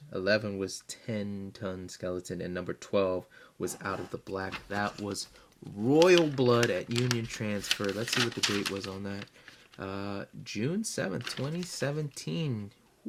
11 was 10 Ton Skeleton, and number 12 was Out of the Black. That was Royal Blood at Union Transfer. Let's see what the date was on that. June 7th, 2017.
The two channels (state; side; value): identical; both; correlation 1.00